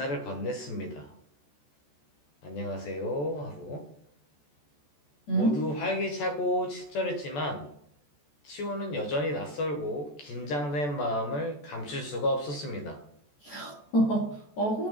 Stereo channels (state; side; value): late; right; 14 ms